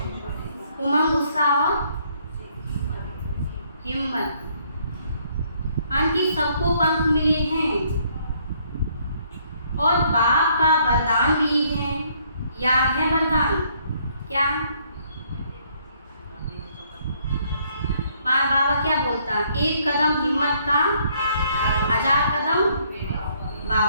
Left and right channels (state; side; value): inverted; both; correlation -0.67